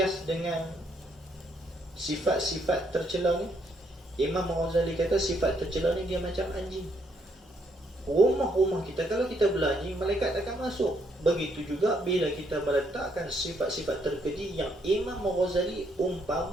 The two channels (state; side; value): normal; both; correlation 0.72